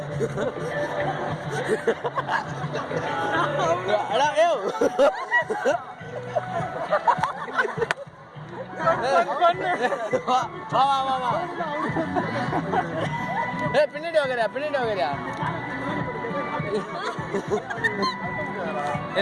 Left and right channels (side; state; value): both; identical; correlation 1.00